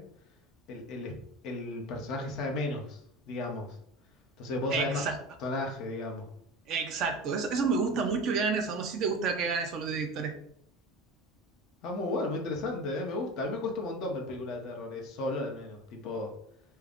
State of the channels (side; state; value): both; normal; correlation 0.31